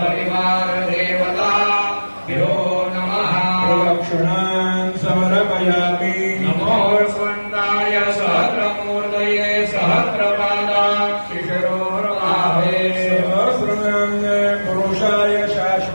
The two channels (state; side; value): inverted; both; correlation -1.00